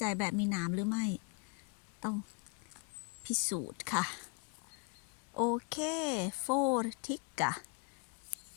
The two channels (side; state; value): right; quieter; 32.9 dB